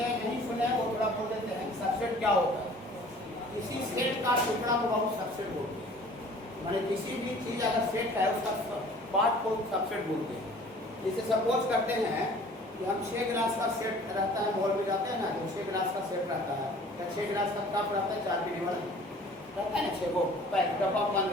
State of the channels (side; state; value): both; normal; correlation 0.49